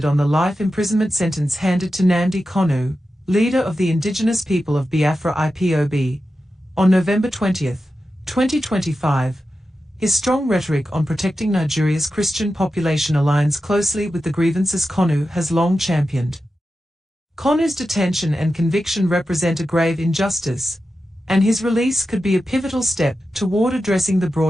on the life imprisonment sentence handed to Nnamdi Kanu, leader of the indigenous people of Biafra Ipob, on November 20, 2025, his strong rhetoric on protecting Nigeria's Christian population aligns closely with the grievances Kanu has long championed. Kanu's detention and conviction represent a grave injustice, and his release could be a pivotal step toward addressing the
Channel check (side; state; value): both; normal; correlation 0.91